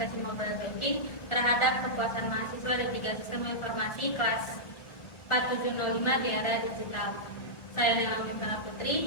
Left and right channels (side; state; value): right; late; 1.5 ms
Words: mobile banking terhadap kepuasan mahasiswa D3 Sistem Informasi kelas 4705 di era digital. Saya Nela Mifala